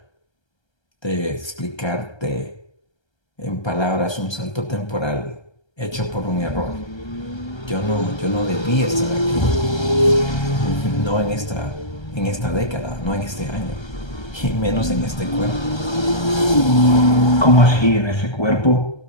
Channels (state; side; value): late; right; 1.3 ms